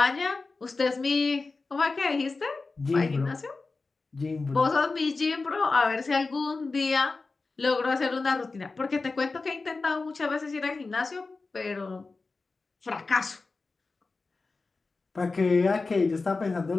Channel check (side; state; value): right; quieter; 3.8 dB